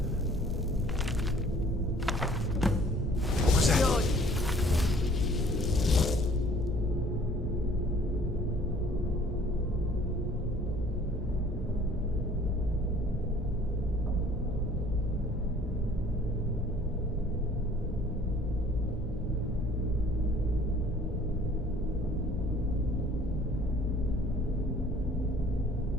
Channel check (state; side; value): normal; both; correlation 0.55